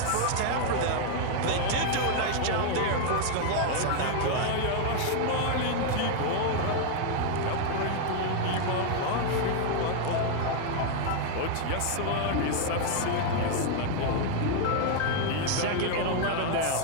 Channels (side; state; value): both; different; correlation 0.00